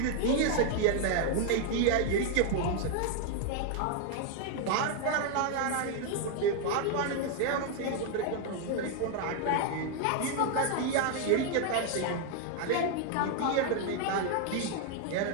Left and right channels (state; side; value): different; both; correlation 0.00